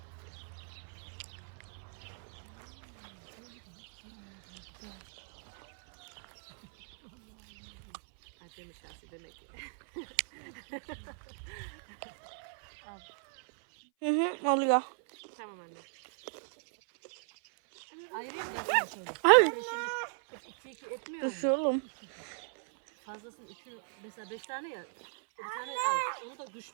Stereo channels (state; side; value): silent; left; 54 dB below the other